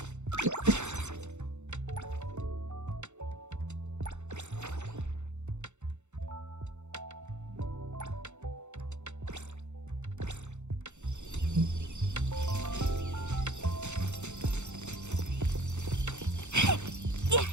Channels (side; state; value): left; late; 0.83 ms